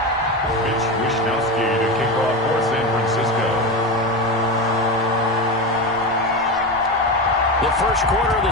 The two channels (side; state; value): both; normal; correlation 0.19